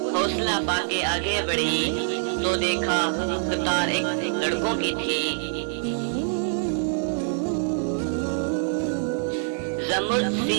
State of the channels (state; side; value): silent; left; digital silence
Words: हौसला पाके आगे बढ़ी तो देखा कतार एक लड़कों की थी। जमुर्द